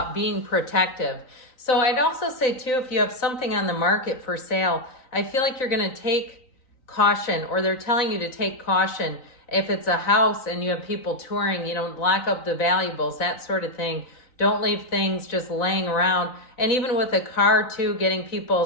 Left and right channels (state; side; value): late; right; 3.9 ms